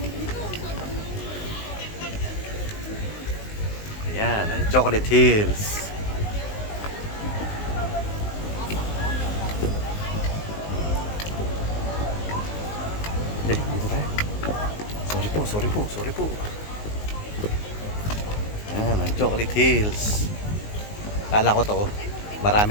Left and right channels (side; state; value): right; late; 19 ms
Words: Ayan, ang Chocolate Hills. sorry po, sorry po. Ayan, ang Chocolate Hills. Kala ko to,